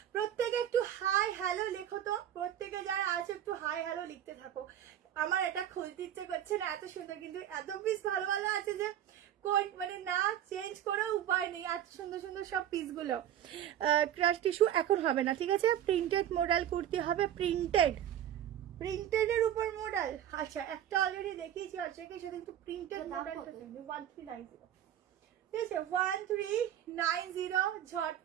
প্রত্যেকে একটু হাই হ্যালো লেখো তো, প্রত্যেকে যারা আছে একটু হাই হ্যালো লিখতে থাকো। আমার এটা খুলতে ইচ্ছে করছে না, এত সুন্দর, কিন্তু এত পিস ভালো ভালো আছে যে মানে না চেঞ্জ করেও উপায় নেই। এত সুন্দর সুন্দর সব পিসগুলো। ক্রাশ টিস্যু এখন হবে না, ঠিক আছে। প্রিন্টেড মডেল কুর্তি হবে, প্রিন্টেড এর উপর মডেল। আচ্ছা, একটা অলরেডি দেখিয়েছি, আচ্ছা সেটা কিন্তু প্রিন্টেড মডেল 1390। ঠিক আছে, 1390।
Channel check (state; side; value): quieter; left; 10.9 dB